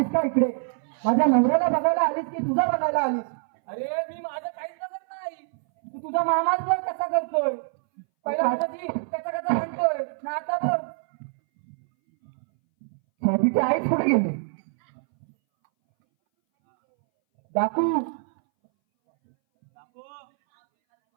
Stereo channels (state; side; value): silent; left; 61 dB below the other